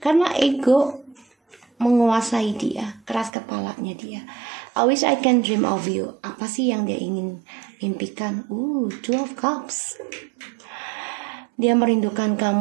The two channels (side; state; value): left; drops out; at 3.3 s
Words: ego menguasai dia, keras kepalanya dia. I wish I can dream of you. Apa sih yang dia ingin mimpikan? Two of Cups. Dia merindukan